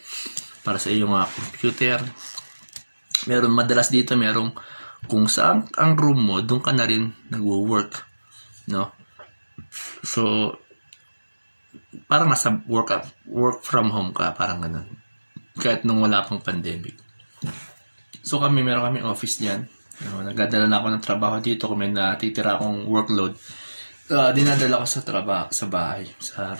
para sa iyong computer. Madalas dito, merong kung saan ang room mo, doon ka na rin nag-work, no? So, parang nasa work from home ka, parang ganun. Kahit nung wala pang pandemic. So meron kami office dyan. Nagdadala na ako ng trabaho dito kung may natitira akong workload. Dinadala ko sa bahay, sa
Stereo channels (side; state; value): both; inverted; correlation -1.00